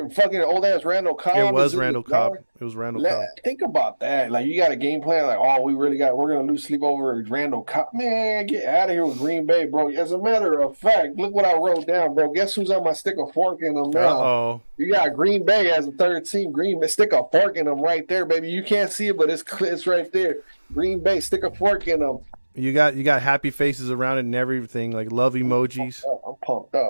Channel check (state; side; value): inverted; both; correlation -1.00